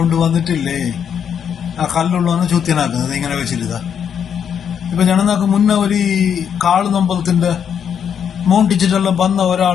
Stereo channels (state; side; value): quieter; right; 8.0 dB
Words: ആ കല്ലുള്ളവനെ ചൂത്യനാക്കുന്നത് ഇങ്ങനെ വെച്ചിരുതാ. ഇപ്പൊ ഞങ്ങൾക്ക് മുന്നേ ഒരു കാളുനമ്പലത്തിന്റെ മോണ്ടിച്ചിട്ടെല്ലാം വന്ന